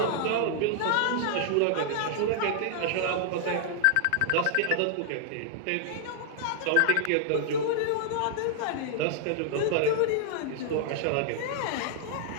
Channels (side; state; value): both; different; correlation -0.01